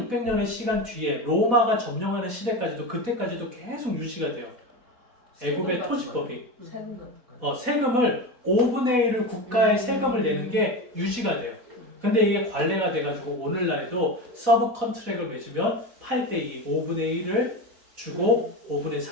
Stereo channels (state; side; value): late; left; 4.1 ms